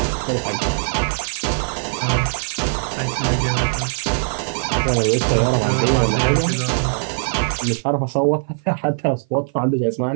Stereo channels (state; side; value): silent; left; 56 dB below the other